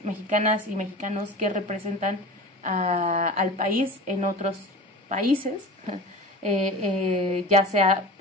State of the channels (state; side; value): normal; both; correlation 0.35